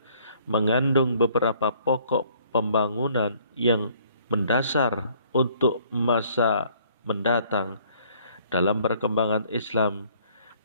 mengandung beberapa pokok pembangunan yang mendasar untuk masa mendatang dalam perkembangan Islam.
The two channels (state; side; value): inverted; both; correlation -0.61